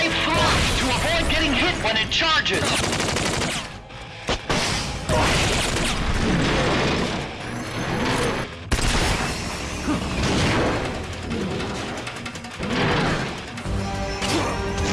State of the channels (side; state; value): both; identical; correlation 1.00